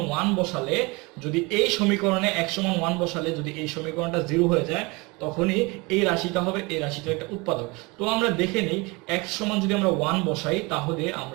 1 বসালে যদি এই সমীকরণে x সমান 1 বসালে যদি এই সমীকরণটা 0 হয়ে যায় তখনই এই রাশিটা হবে এই রাশিটার একটা উৎপাদক। তো আমরা দেখে নেই x সমান যদি আমরা 1 বসাই তাহলে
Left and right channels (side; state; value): left; quieter; 26.3 dB